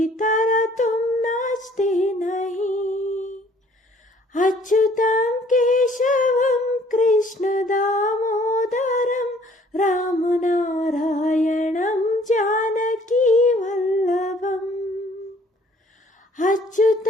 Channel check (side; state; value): both; normal; correlation 0.58